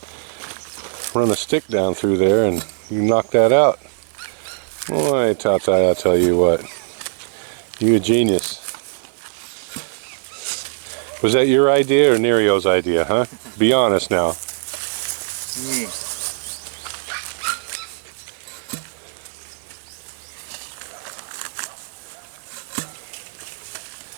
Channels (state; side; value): silent; left; 65 dB below the other